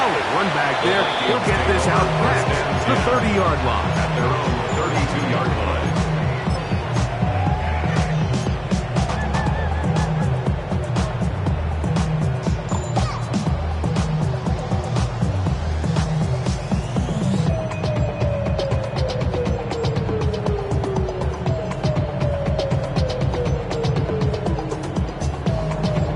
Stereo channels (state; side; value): identical; both; correlation 1.00